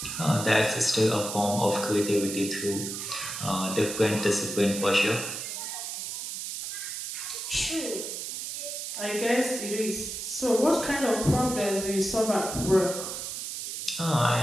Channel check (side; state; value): right; noise; hiss, 6 dB below the sound